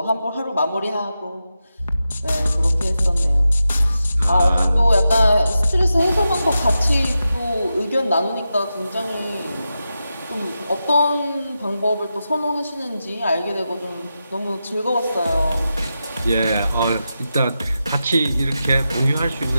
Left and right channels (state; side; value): inverted; both; correlation -0.90